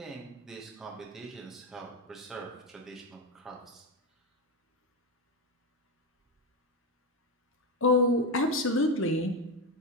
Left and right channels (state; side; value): normal; both; correlation 0.13